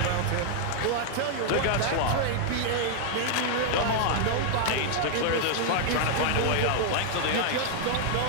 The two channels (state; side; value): different; both; correlation 0.00